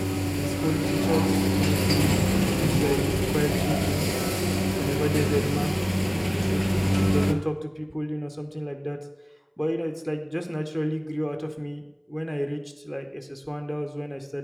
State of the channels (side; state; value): both; identical; correlation 1.00